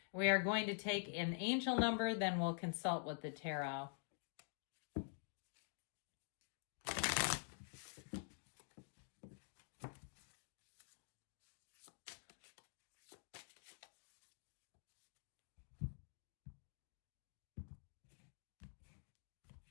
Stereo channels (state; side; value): silent; right; digital silence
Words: We are going to take an angel number, then we'll consult with the tarot.